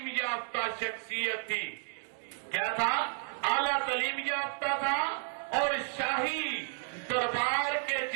یافتہ شخصیت تھی۔ کیا تھا؟ اعلیٰ تعلیم یافتہ تھا، اور شاہی دربار کے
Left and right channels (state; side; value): silent; left; 56 dB below the other